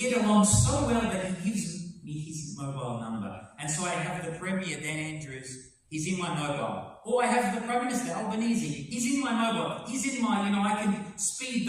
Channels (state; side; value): identical; both; correlation 1.00